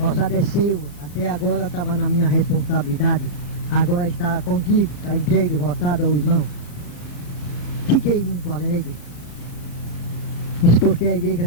roçado é seu, até agora estava na minha responsabilidade. Agora está contigo, está entregue o roçado ao irmão. Fiquei muito alegre. Isso porque a igreja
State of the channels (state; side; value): late; right; 34 ms